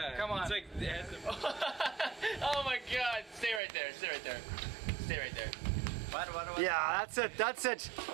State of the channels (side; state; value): left; drops out; at 3.6 s